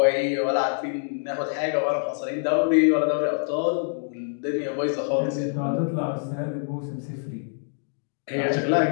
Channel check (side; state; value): right; silent; digital silence